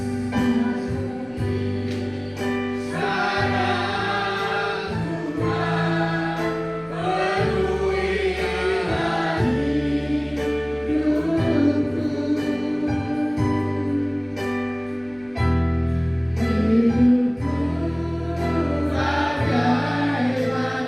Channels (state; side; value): noise; left; rumble, 27 dB below the sound